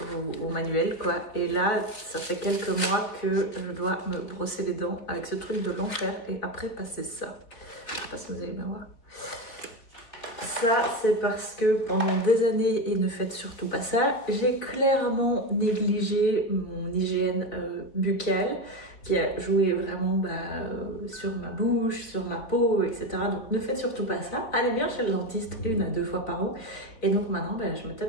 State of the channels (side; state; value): right; late; 3.9 ms